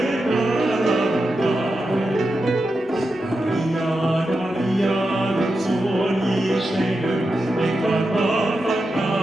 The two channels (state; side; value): normal; both; correlation 0.89